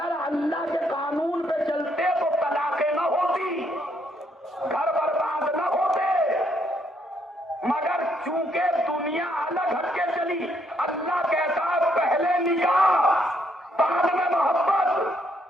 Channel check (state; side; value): normal; both; correlation 0.72